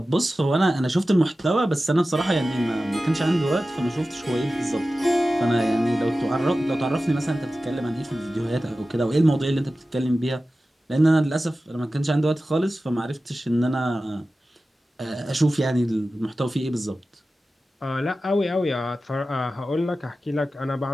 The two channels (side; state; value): both; normal; correlation 0.95